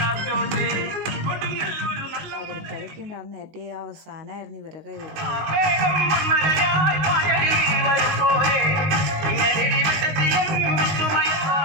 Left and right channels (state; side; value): late; left; 19 ms